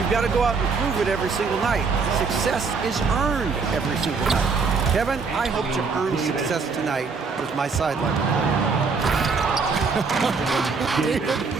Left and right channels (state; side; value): quieter; left; 4.8 dB